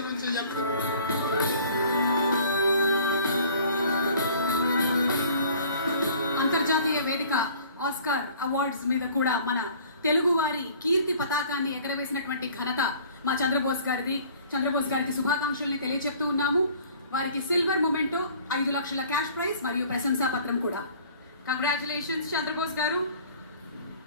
నుంచి అంతర్జాతీయ వేదిక ఆస్కార్ అవార్డ్స్ మీద కూడా మన తెలుగు వారి కీర్తి పతాకాన్ని ఎగరవేసినటువంటి ఘనత మా చంద్రబోస్ గారికి శుభాకాంక్షల్ని తెలియజెప్తూ ఉన్నాము. వారికి సిల్వర్ మొమెంటో 5 లక్షల క్యాష్ ప్రైజ్ మరియు ప్రశంసా పత్రం కూడా. కంగ్రాచులేషన్స్ చంద్రబోస్ గారు.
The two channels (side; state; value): both; inverted; correlation -0.51